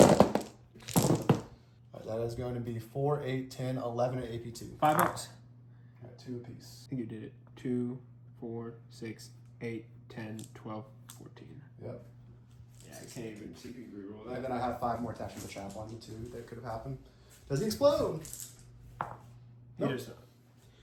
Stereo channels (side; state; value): both; identical; correlation 1.00